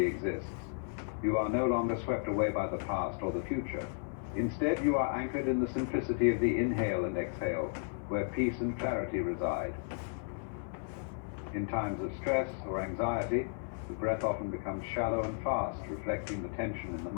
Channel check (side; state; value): right; silent; 55 dB below the other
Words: exists. You are no longer swept away by the past or the future. Instead, you are anchored in the simplicity of the inhale and exhale, where peace and clarity reside. In times of stress or anxiety, the breath often becomes shallow and fast, reflecting the tension in the